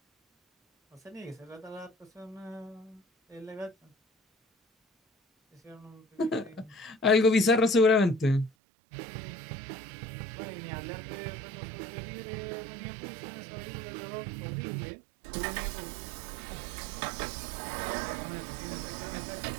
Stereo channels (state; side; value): drops out; left; at 8.5 s